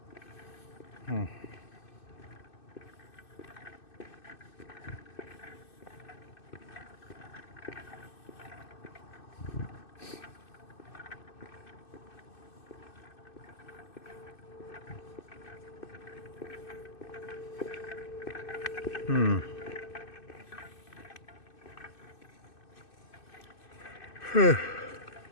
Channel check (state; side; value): late; right; 2.6 ms